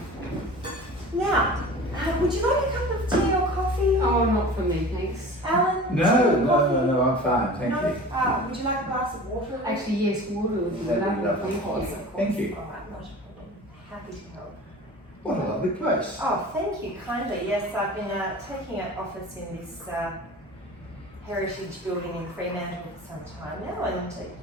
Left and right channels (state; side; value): normal; both; correlation 0.39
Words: Now, would you like a cup of tea or coffee? Oh, not for me, thanks. Alan? tea No, or no, coffee? no, I'm fine. Thank No? you. Would you like a glass of water? Actually, yes, water would be That'd be lovely. lovely. Of course, Thank you. of course. Thank you. All right, not a problem. Happy to help. What a lovely place. Oh, thank you kindly. Yes, I've been taking up office in this heritage building in Fremantle for some time now, and I